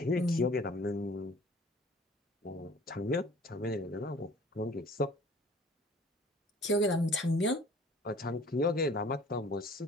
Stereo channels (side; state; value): both; normal; correlation 0.50